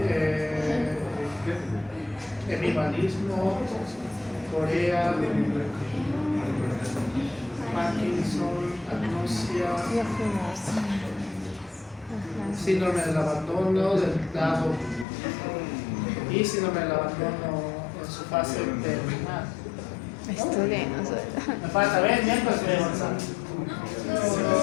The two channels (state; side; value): drops out; right; at 15.1 s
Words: hemibalismo, Corea, Parkinson, agnosia, Ya fuimos. Ajá. síndrome del abandono del lado y síndrome del abandono en su fase terminal. Estudiemos. Me falta ver, mientras voy avanzando.